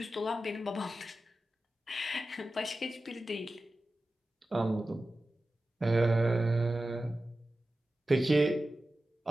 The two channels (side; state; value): both; normal; correlation 0.94